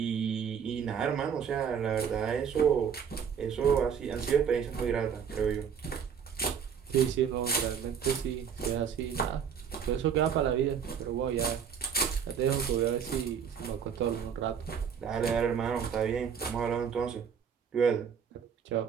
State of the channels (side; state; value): left; quieter; 7.3 dB